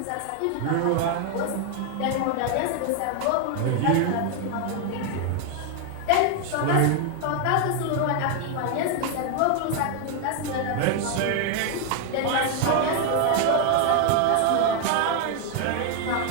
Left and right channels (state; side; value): different; both; correlation 0.00